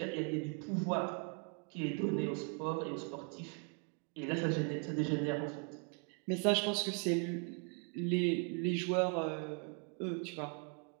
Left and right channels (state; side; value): quieter; left; 39.5 dB